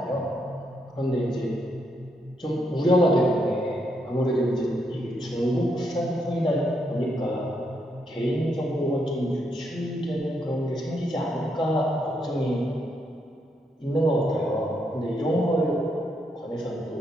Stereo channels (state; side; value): normal; both; correlation 0.78